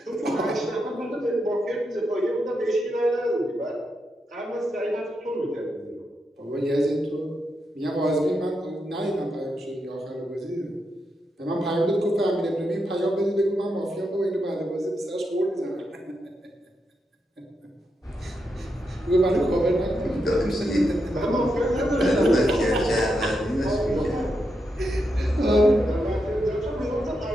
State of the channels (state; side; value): normal; both; correlation 0.84